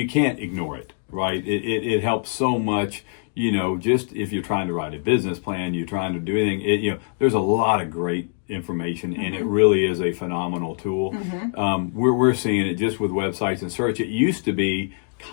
can't ignore it, right? It helps so much. You know, just if you're trying to write a business plan, you're trying to do anything, you know, there's a lot of great information, and it really is a phenomenal tool. We're seeing it just with websites and search. It used to be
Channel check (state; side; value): silent; right; 63 dB below the other